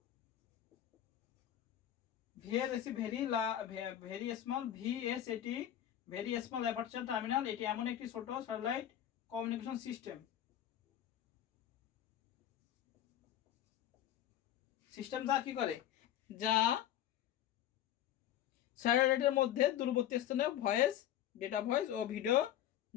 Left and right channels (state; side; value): quieter; right; 11.5 dB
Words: VS very small VSAT very small aperture terminal, এটি এমন একটি ছোট স্যাটেলাইট কমিউনিকেশন সিস্টেম যা কি করে, যা স্যাটেলাইটের মধ্যে দূরবর্তী স্থানে ভয়েস, ডেটা ভয়েস ও ভিডিও